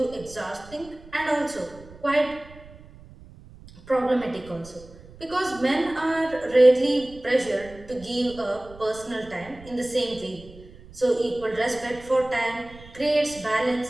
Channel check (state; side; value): noise; right; rumble, 20 dB below the sound